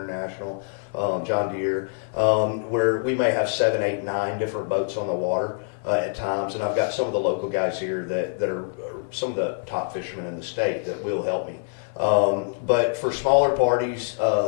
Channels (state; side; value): silent; right; 62 dB below the other